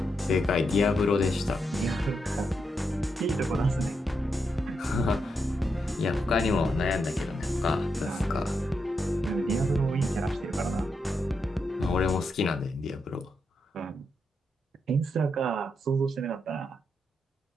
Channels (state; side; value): normal; both; correlation 0.83